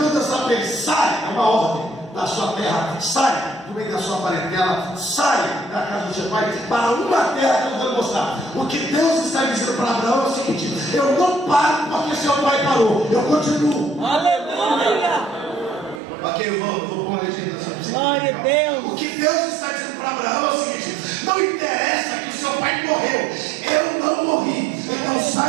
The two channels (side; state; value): left; drops out; at 16.0 s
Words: Deus está bem, sai, é uma ordem da sua terra, sai do meio da sua parentela, sai da casa do seu pai, para uma terra que eu vou mostrar. O que Deus está dizendo para Abraão é o seguinte: eu não paro porque seu pai parou, eu continuo. Aleluia. Ok, eu vou pôr uma legenda sobre Glória a Deus. O que Deus está dizendo para Abraão é o seguinte: não interessa que o seu pai morreu, eu não morri, então